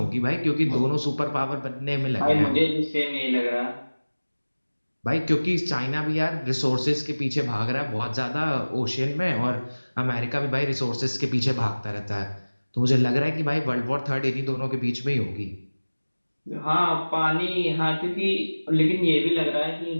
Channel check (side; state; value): both; inverted; correlation -1.00